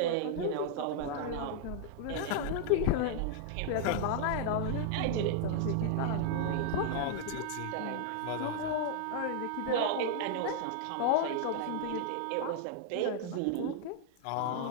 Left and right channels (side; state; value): both; different; correlation 0.00